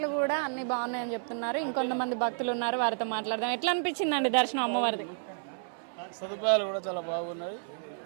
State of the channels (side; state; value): left; silent; 57 dB below the other